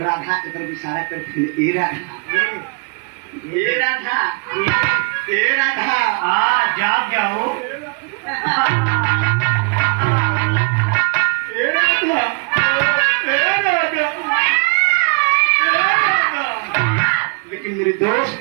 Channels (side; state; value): left; quieter; 33.2 dB